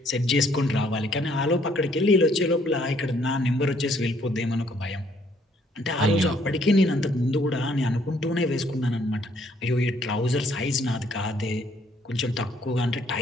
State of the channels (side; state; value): both; normal; correlation 0.65